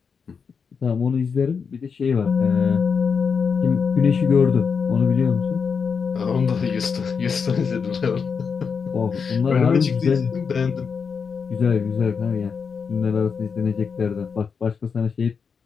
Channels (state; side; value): quieter; right; 5.9 dB